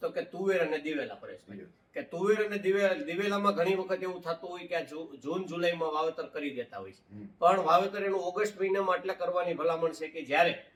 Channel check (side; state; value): both; identical; correlation 1.00